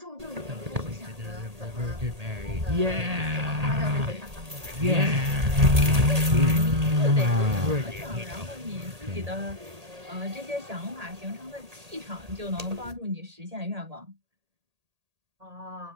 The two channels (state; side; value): late; left; 1.8 ms